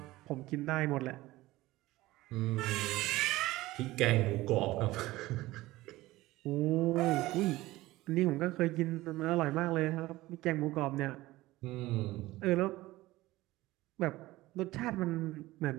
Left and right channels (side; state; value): left; quieter; 18.1 dB